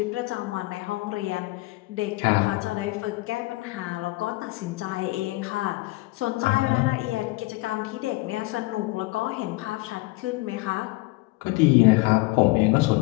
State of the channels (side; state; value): right; quieter; 21.6 dB